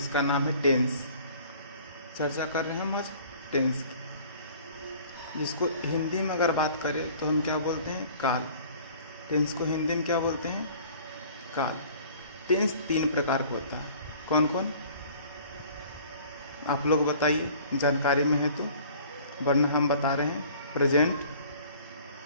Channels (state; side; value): inverted; both; correlation -0.50